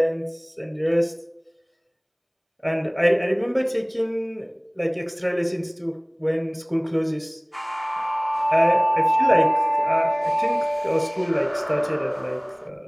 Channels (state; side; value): identical; both; correlation 1.00